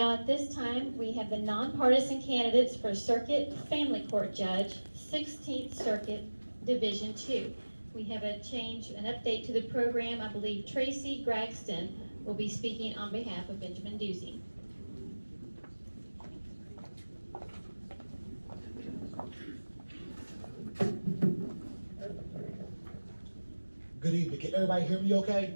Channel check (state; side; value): inverted; both; correlation -1.00